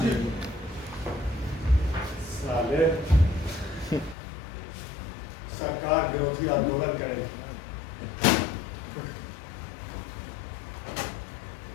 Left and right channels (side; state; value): right; drops out; at 4.2 s